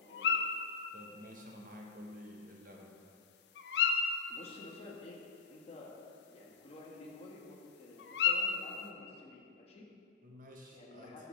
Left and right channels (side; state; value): right; quieter; 5.5 dB